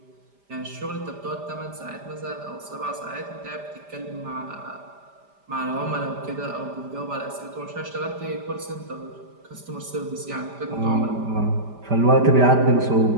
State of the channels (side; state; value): left; late; 5.0 ms